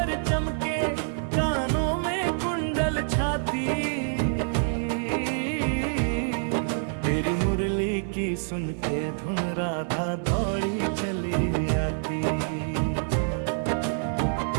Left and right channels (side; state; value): left; silent; digital silence